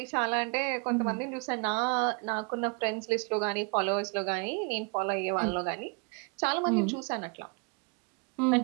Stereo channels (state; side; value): quieter; left; 34.1 dB